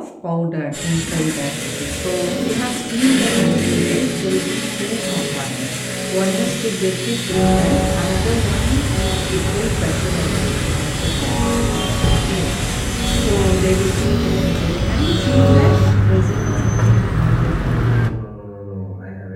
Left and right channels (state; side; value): identical; both; correlation 1.00